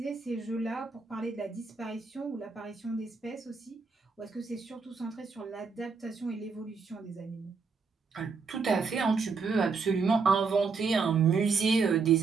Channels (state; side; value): quieter; left; 4.9 dB